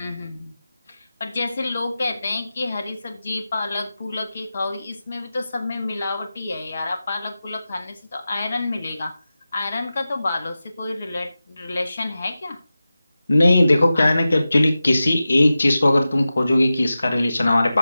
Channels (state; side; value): inverted; both; correlation -0.94